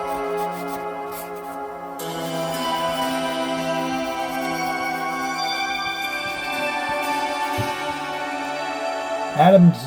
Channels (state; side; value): identical; both; correlation 1.00